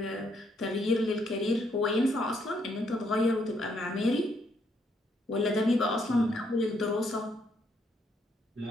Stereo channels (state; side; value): normal; both; correlation 0.73